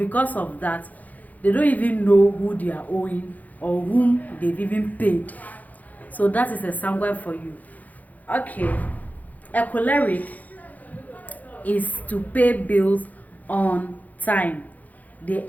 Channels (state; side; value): late; right; 0.079 ms